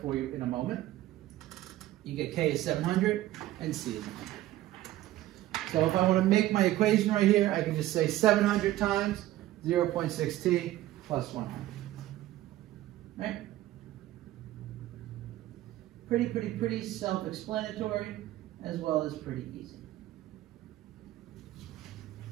for you in a moment. You get K is 700 and C is 100. So if I want to make my equation right here, I can just say 700 times 0.6T plus 100. Right? Pretty self-explanatory, as well as pretty easy.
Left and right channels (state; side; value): quieter; left; 15.1 dB